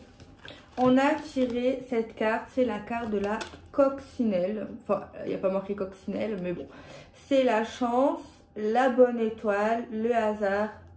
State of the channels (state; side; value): identical; both; correlation 1.00